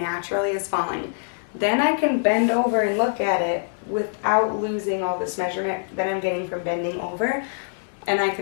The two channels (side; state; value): right; silent; digital silence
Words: is falling. Then I can bend over and look at it without losing all this measurement that I'm getting from bending over, and I